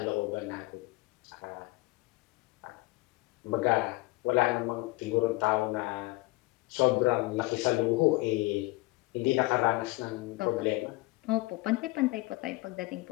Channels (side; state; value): right; quieter; 21.7 dB